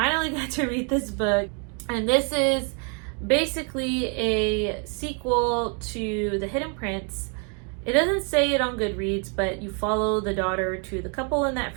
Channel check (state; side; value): quieter; left; 38.9 dB